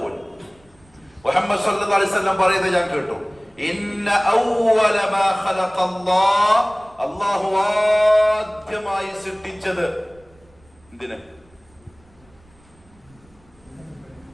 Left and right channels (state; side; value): noise; right; rumble, 30 dB below the sound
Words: മുഹമ്മദ് സ്വല്ലല്ലാഹു അലൈഹി വസല്ലം പറയുന്നത് ഞാൻ കേട്ടു. ഇന്ന അവ്വല മാ ഖലഖല്ലാഹ്, അല്ലാഹു ആദ്യമായി സൃഷ്ടിച്ചത് എന്തിനെ?